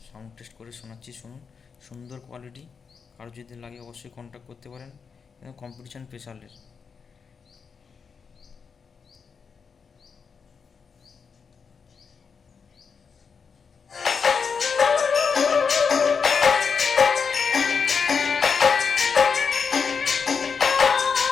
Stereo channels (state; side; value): quieter; right; 5.8 dB